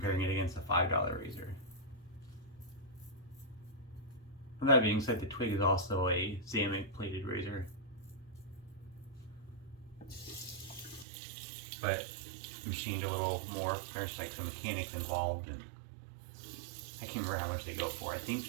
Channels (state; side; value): drops out; left; at 11.1 s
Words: it against a $5 razor. With that being said, the Twig is also a Xamic plated razor. But machined a little more. There's like some mechanics involved, and I can't remember how much they go for. I think